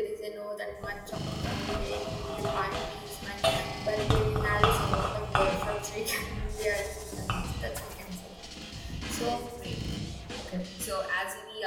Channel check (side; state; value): both; identical; correlation 1.00